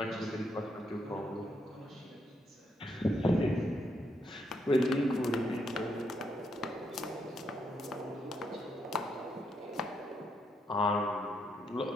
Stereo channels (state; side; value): normal; both; correlation 0.78